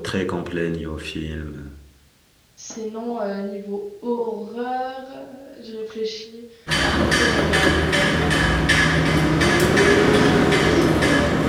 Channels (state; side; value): identical; both; correlation 1.00